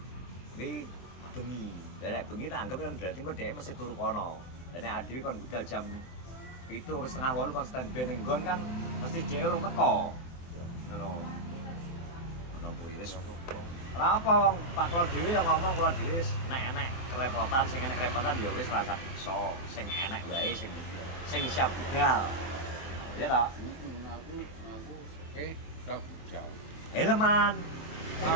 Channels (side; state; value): right; late; 23 ms